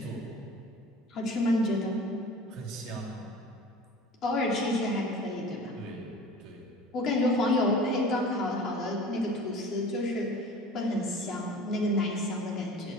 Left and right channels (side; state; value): both; normal; correlation 0.41